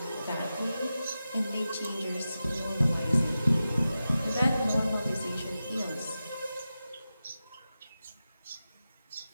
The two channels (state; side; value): inverted; both; correlation -0.93